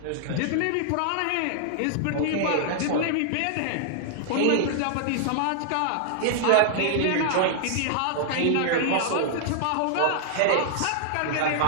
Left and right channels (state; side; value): different; both; correlation -0.01